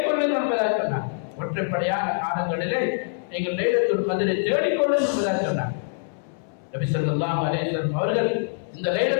என்பதாக சொன்னார். ஒற்றைப்படையான காலங்களிலே நீங்கள் லைலத்துல் கத்ரை தேடிக்கொள்ளுங்கள் என்பதாக சொன்னார். நபி ஸல்லல்லாஹு அலைஹி வஸல்லம் அவர்கள் இந்த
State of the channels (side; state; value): right; silent; 62 dB below the other